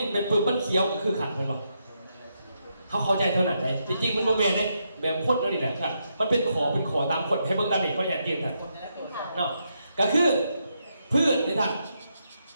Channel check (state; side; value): inverted; both; correlation -0.81